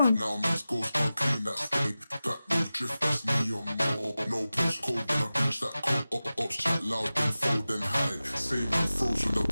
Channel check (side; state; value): both; inverted; correlation -0.95